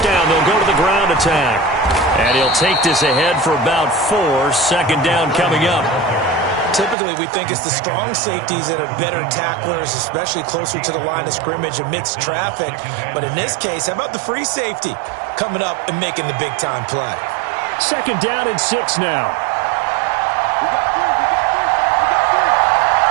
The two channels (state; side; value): drops out; left; at 7.0 s